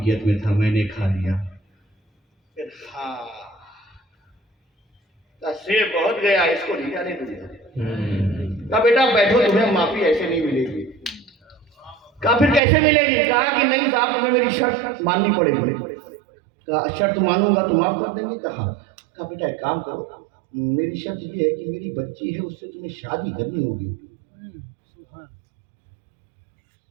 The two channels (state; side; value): drops out; left; at 12.6 s